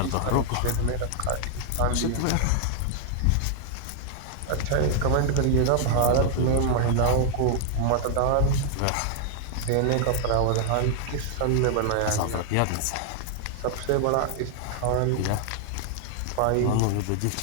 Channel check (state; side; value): different; both; correlation 0.00